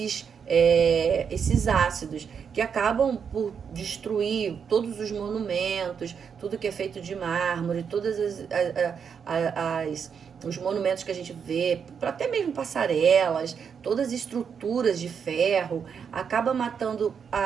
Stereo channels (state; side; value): quieter; left; 6.9 dB